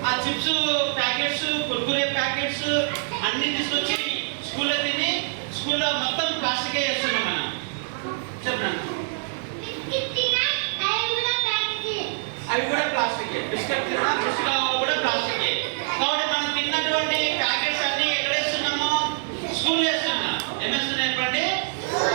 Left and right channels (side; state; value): left; silent; digital silence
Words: ఆ చిప్స్ ప్యాకెట్స్ కుర్కురే ప్యాకెట్స్ అన్ని తీసుకొచ్చి స్కూల్లో తిని స్కూల్లో మొత్తం ప్లాస్టికే చేస్తున్నాం మనం. చెప్పండి. అవి కూడా ప్లాస్టికే. బిస్కెట్ తిన్నా బిస్కెట్ కూడా ప్లాస్టికే. కాబట్టి మనం తిన్నటువంటి ప్యాకెట్స్ అన్ని ఎక్కడ వేస్తున్నాము? స్కూల్ వేస్తున్నాం. ఏమేస్తున్నాయి చెప్పండి?